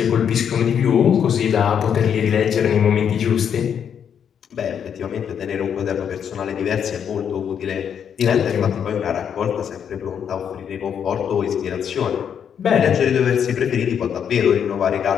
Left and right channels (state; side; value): quieter; right; 8.1 dB